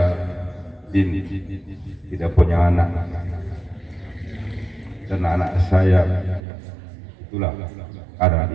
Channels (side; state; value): left; drops out; at 6.4 s